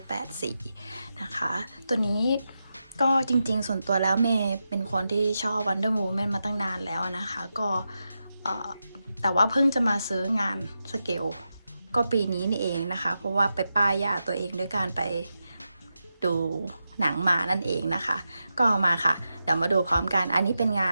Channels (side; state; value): both; inverted; correlation -0.89